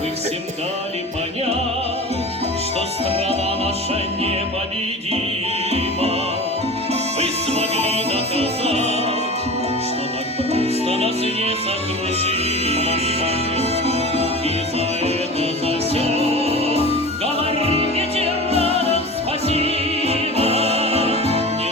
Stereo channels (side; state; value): both; normal; correlation 0.34